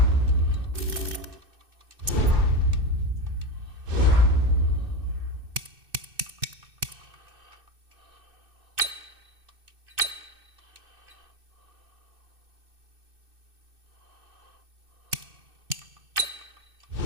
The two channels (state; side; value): late; left; 2.6 ms